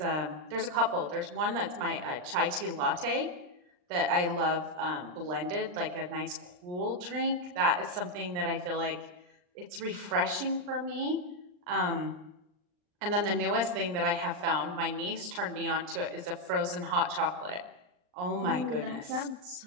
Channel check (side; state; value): left; late; 39 ms